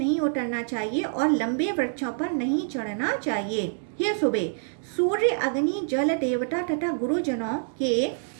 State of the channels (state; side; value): silent; left; digital silence